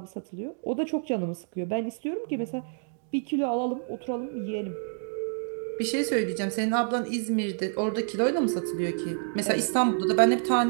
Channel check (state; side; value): silent; left; 59 dB below the other